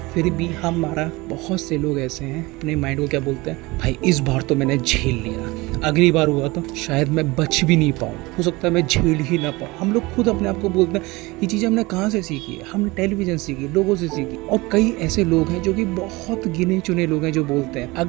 फिर भी हमारा बहुत से लोग ऐसे हैं, अपने माइंड को क्या बोलते हैं, भाई इस बार तो मैंने झेल लिया, अगली बार हुआ तो शायद मैं बच भी नहीं पाऊँ, हो सकता है मैं झेल ही ना पाऊँ। हम लोग खुद अपने आप को बोलते हैं। ये चीज़ें हमने कहाँ से सीखी है? हमने टेलीविजन सीखी, लोगों से सीखी। और कई ऐसे लोग हैं जो कि बहुत गिने चुने लोग हैं जो बोलते हैं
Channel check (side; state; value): left; quieter; 22.5 dB